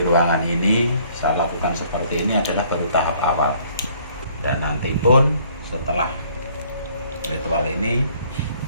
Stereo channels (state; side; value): inverted; both; correlation -0.60